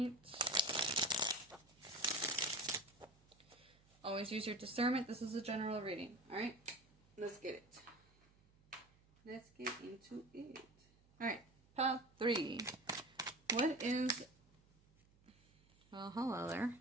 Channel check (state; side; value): noise; right; hum, 30 dB below the sound